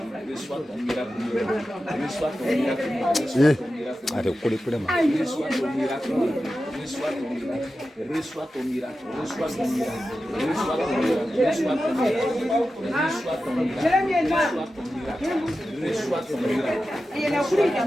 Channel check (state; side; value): normal; both; correlation 0.92